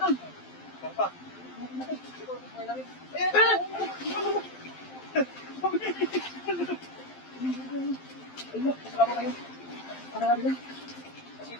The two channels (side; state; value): right; late; 12 ms